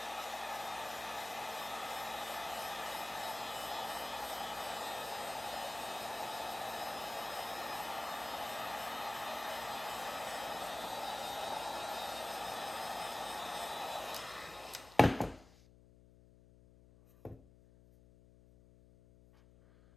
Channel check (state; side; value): noise; left; hum, 22 dB below the sound